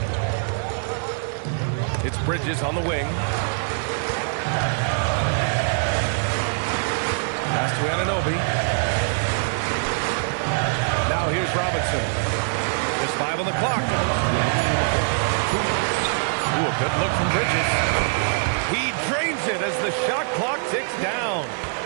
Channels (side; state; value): left; silent; 63 dB below the other